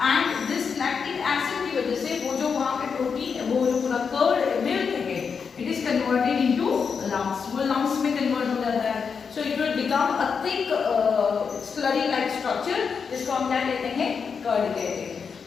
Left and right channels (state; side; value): quieter; right; 6.0 dB